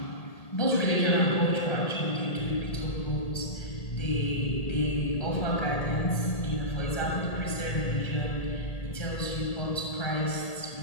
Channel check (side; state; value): right; late; 1.8 ms